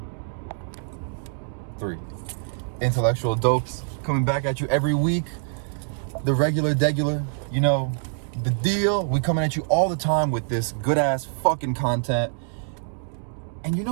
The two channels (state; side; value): silent; left; digital silence